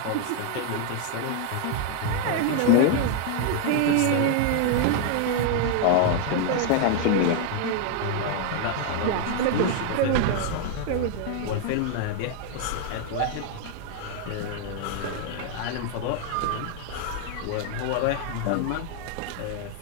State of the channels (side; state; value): both; different; correlation 0.00